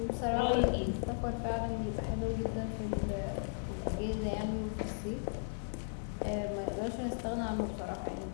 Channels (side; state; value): right; silent; digital silence